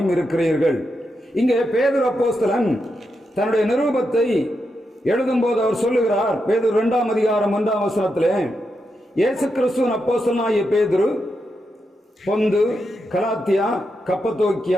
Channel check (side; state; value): both; normal; correlation 0.85